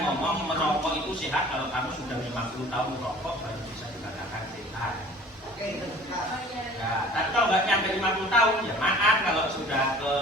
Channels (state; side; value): normal; both; correlation 0.47